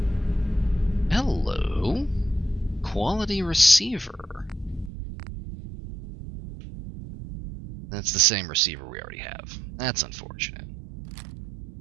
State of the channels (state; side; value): drops out; left; at 4.9 s